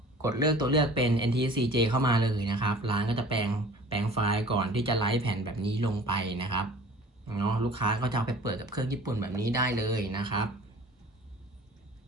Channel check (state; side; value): normal; both; correlation 0.46